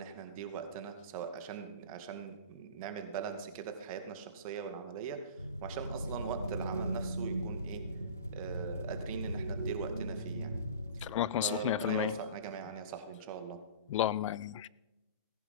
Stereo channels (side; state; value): both; inverted; correlation -0.37